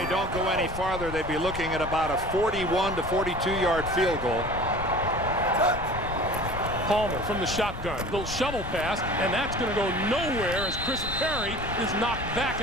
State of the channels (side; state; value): left; noise; rumble, 9 dB below the sound